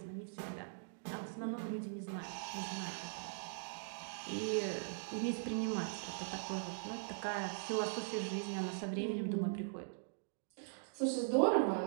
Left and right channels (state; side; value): silent; left; digital silence